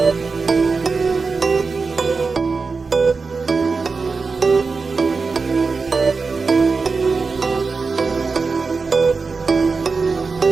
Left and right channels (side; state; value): left; quieter; 4.5 dB